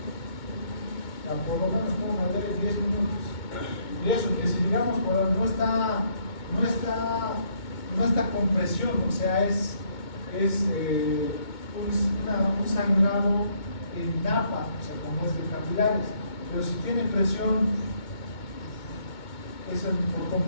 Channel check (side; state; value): right; late; 2.2 ms